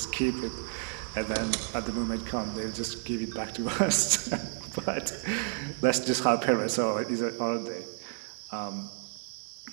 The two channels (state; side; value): silent; left; digital silence